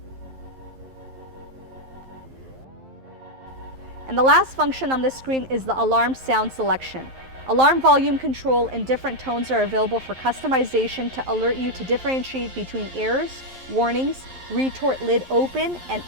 And the last function on this screen is the alarm sound selection. Alarm volume control in different tones are available for customization to alert you to differentiate between errors, warnings, retort lid open, and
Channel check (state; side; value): late; left; 11 ms